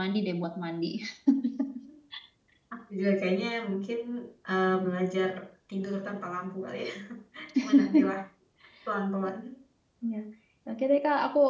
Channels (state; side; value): identical; both; correlation 1.00